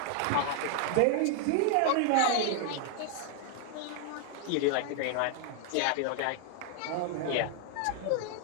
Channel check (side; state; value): both; different; correlation 0.00